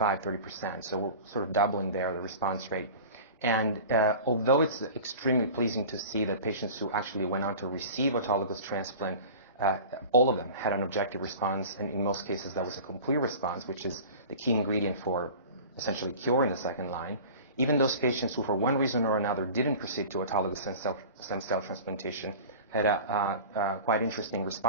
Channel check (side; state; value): both; inverted; correlation -0.38